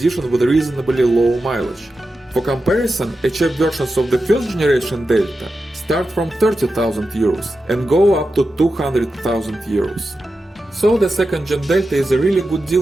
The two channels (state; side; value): normal; both; correlation 0.91